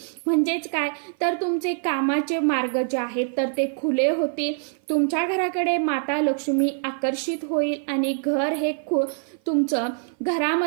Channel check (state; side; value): silent; left; 55 dB below the other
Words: म्हणजेच काय तर तुमचे कामाचे मार्ग जे आहेत तर ते खुले होतील. तुमच्या घराकडे माता लक्ष्मी आकर्षित होईल आणि घर हे